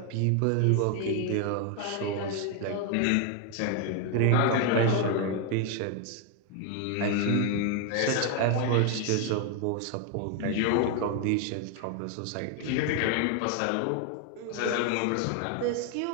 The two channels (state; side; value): different; both; correlation 0.01